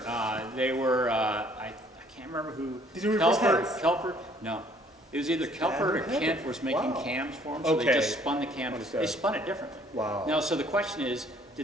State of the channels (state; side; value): normal; both; correlation 0.60